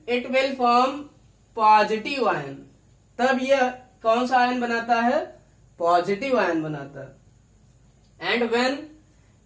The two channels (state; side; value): identical; both; correlation 1.00